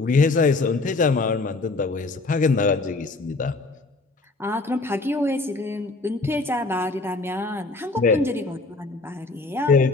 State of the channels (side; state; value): right; quieter; 3.5 dB